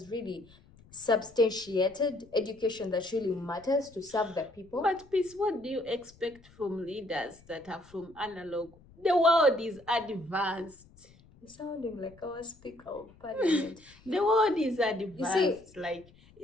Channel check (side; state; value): left; noise; rumble, 26 dB below the sound